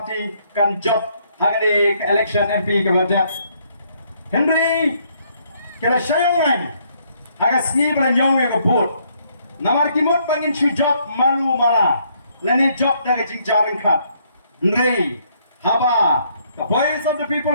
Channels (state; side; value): inverted; both; correlation -0.69